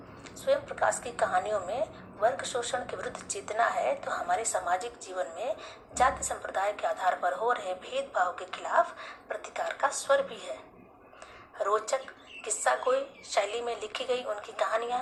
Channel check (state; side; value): identical; both; correlation 1.00